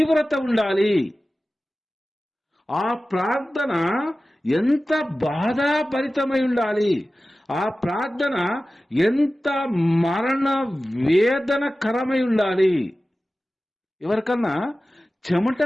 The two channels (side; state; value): both; normal; correlation 0.96